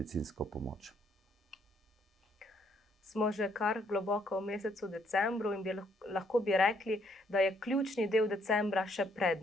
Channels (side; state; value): both; normal; correlation 0.69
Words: pomoč. Smo že kar globoko v mesecu decembru in lahko bi rekli, da je ključni del decembra še